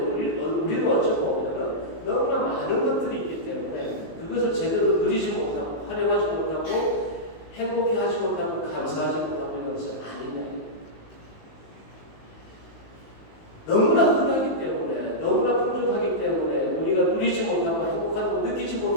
어쩌면 너무나 많은 것들이 있기 때문에 그것을 제대로 누리지 못하고 활용하지 못하고 행복해 하지 못하고 감사하지 못하고 있는 것은 아니냐. 너무나 흔하기 때문에, 너무나 풍족하기 때문에 우리가 누리지 못하고 행복하고 느끼지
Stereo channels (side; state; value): right; late; 19 ms